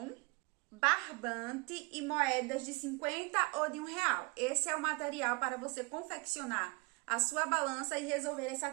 barbante e moedas de 50 ou de R$1. Esse é o material para você confeccionar a sua balança e resolver essa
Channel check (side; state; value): left; quieter; 29.3 dB